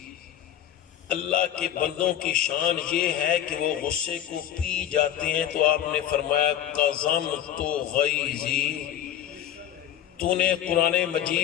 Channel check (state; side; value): quieter; right; 11.0 dB